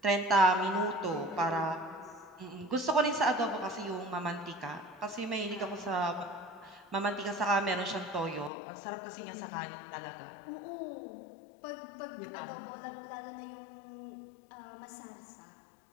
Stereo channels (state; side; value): drops out; right; at 8.5 s